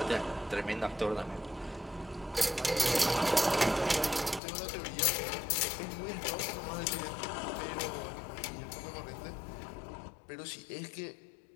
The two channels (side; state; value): right; drops out; at 4.4 s